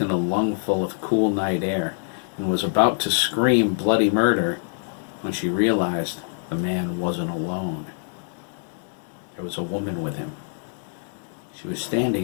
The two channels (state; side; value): silent; right; digital silence